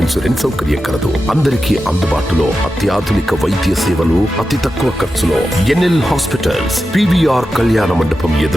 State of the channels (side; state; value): both; normal; correlation 0.91